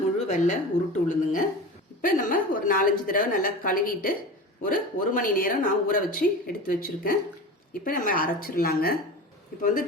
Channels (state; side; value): normal; both; correlation 0.31